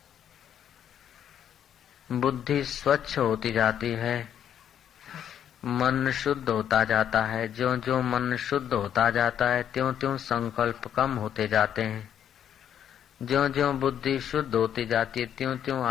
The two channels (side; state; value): right; quieter; 9.6 dB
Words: बुद्धि स्वच्छ होती जाती है, मन शुद्ध होता जाता है। ज्यों ज्यों मन शुद्ध होता जाता है त्यों त्यों संकल्प कम होते जाते हैं। ज्यों ज्यों बुद्धि शुद्ध होती जाती है त्यों त्यों